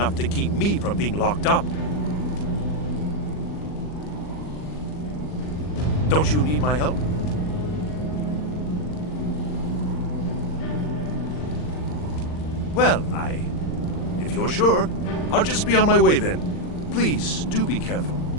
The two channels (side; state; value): right; late; 39 ms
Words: to keep me from being locked up. Don't you need my help? Well, if you're sure, I'll just be on my way then. Please, do be careful.